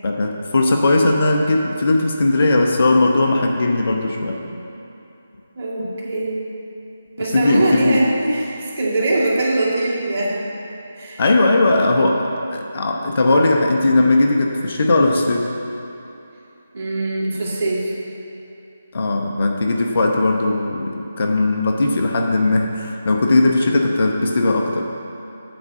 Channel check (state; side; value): inverted; both; correlation -0.89